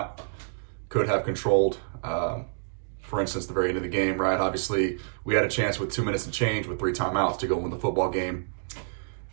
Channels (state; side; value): silent; left; digital silence